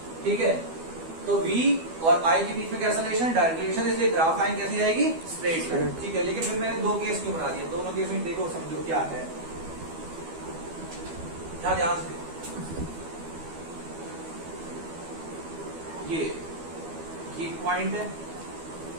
ठीक है, तो V और I के बीच में कैसा रिलेशन? डायरेक्ट रिलेशन, इसलिए ग्राफ लाइन कैसी जाएगी? Straight line. ठीक है, लेकिन फिर मैंने दो केस क्यों बना दिए? दोनों केस में देखो, समझो क्या है। क्या ध्यान से ये पॉइंट है,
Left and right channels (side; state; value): left; late; 12 ms